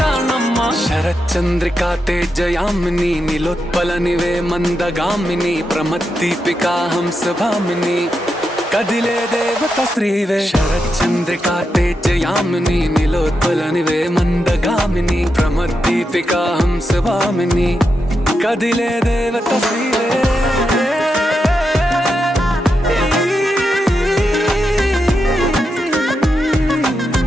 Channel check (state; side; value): normal; both; correlation 0.86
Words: శరచంద్రికా తేజయామిని నిలోత్పలనివే మందగామిని ప్రమద్దీపికా హంసభామిని కదిలే దేవత స్త్రీవే శరచంద్రికా తేజయామిని నిలోత్పలనివే మందగామిని ప్రమద్దీపికా హంసభామిని కదిలే దేవత స్త్రీవే